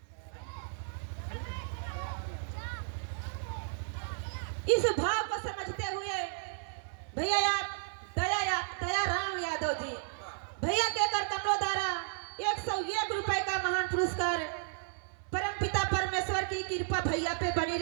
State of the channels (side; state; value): left; silent; 55 dB below the other